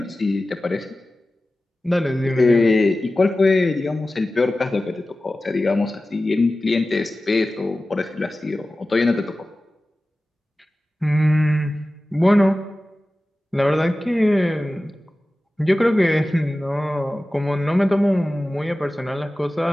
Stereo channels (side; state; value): both; normal; correlation 0.96